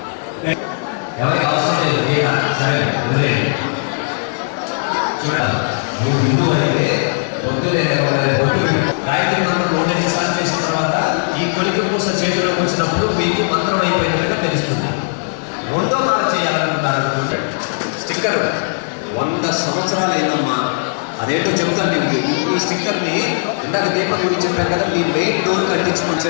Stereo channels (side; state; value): right; silent; digital silence